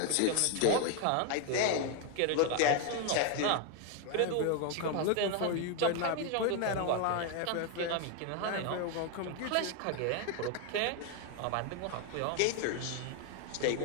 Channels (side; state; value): both; different; correlation 0.01